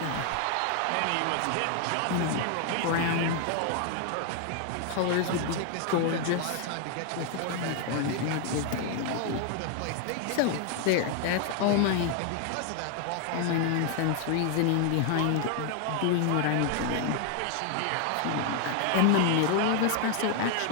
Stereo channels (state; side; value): different; both; correlation 0.00